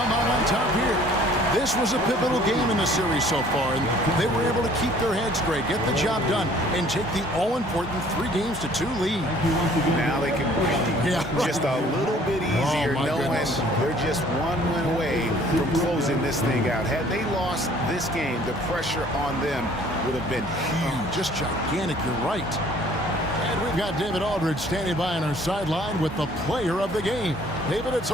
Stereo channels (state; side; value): normal; both; correlation 0.55